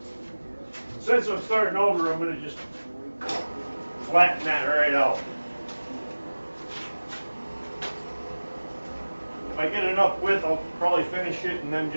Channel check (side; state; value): both; inverted; correlation -1.00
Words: Since I'm starting over, I'm going to just flatten that right out. If I get enough width, I'll probably finish it and then